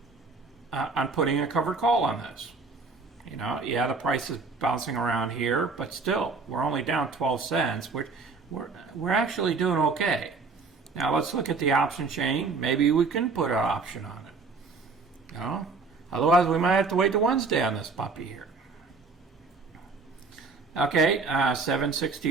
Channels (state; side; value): quieter; left; 4.3 dB